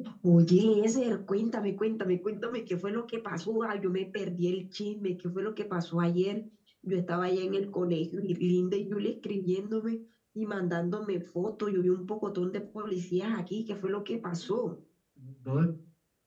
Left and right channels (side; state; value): both; identical; correlation 1.00